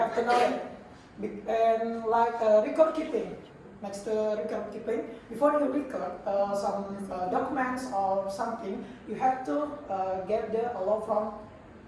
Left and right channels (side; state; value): both; identical; correlation 1.00